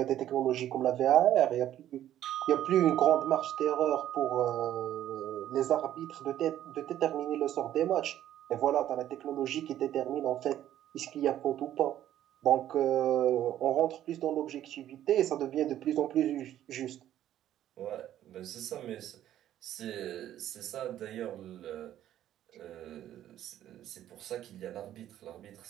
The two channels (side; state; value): left; quieter; 12.0 dB